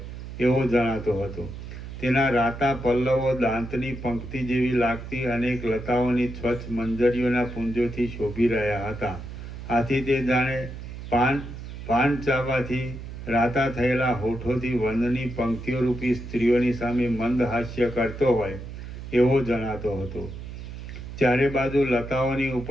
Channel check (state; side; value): noise; right; hum, 10 dB below the sound